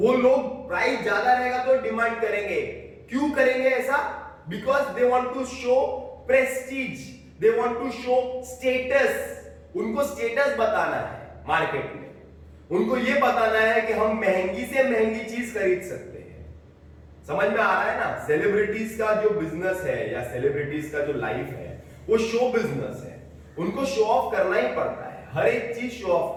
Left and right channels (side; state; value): both; identical; correlation 1.00